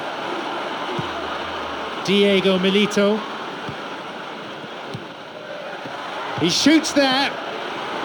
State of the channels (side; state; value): both; identical; correlation 1.00